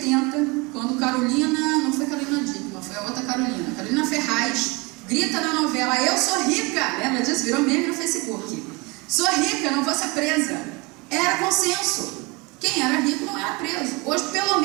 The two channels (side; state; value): left; quieter; 26.7 dB